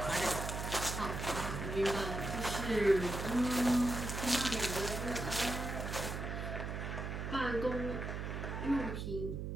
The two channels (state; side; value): noise; right; hum, 4 dB below the sound